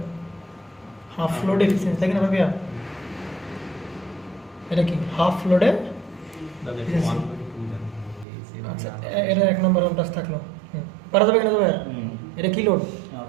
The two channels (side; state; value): left; drops out; at 8.2 s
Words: হাফ লোড এফিসিয়েন্সি, তাই না ভাবিয়া? এটা কি হাফ লোডে? আচ্ছা এটা 1 নম্বর হোম টাস্ক থাকলো। পারা যাবে কিনা যাবে? এটা কি লোড?